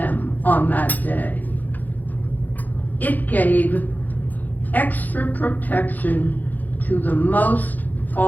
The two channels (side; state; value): right; late; 0.083 ms